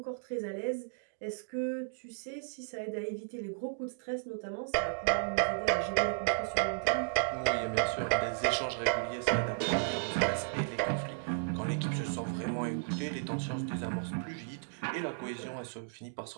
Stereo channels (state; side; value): silent; left; digital silence